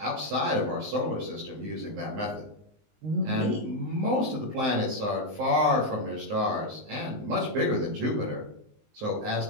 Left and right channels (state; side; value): late; left; 19 ms